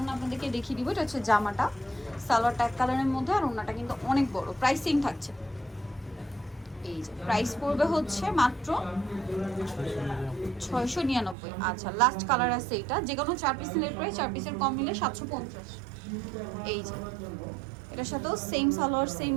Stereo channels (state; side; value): drops out; left; at 11.4 s